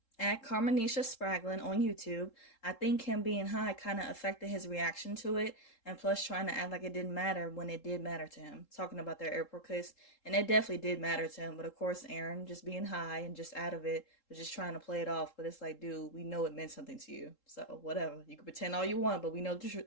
At Carmenisha Spraglin on YouTube, I think him being high kind of affected his reaction to it, and plus trying to act like it didn't matter when it did matter to him. Talking about their airport case, and it definitely did matter to him, but of course Aaron, just being high and just out of it, was just trying to play it off, but it's like, dude, we know it meant something to you, so whatever. You can pretend all you want, but we know the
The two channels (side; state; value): right; late; 3.7 ms